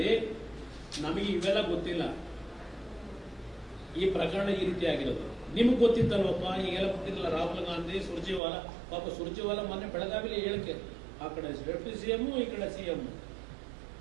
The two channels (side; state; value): left; drops out; at 8.4 s